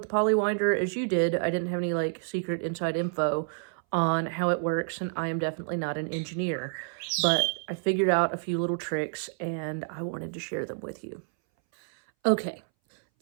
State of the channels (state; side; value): silent; left; 59 dB below the other